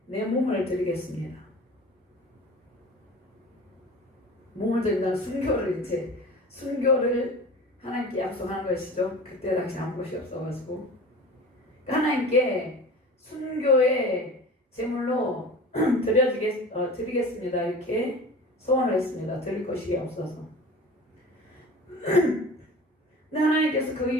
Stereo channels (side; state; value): both; normal; correlation 0.38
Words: 내 몸을 드리겠습니다. 몸을 드린다는 순교를 하나님께 약속하는 것이죠. 그때 당시 아무것이 없어가지고 하나님께 순교의 제물로 드리겠습니다. 이렇게 소원을 했습니다. 드릴 것이 없어서. 근데 하나님께서 그